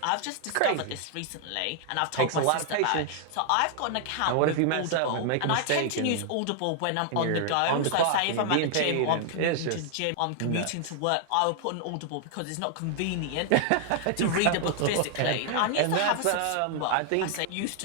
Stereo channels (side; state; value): both; different; correlation 0.00